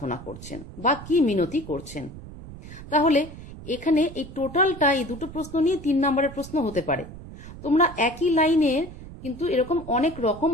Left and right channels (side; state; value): right; noise; rumble, 14 dB below the sound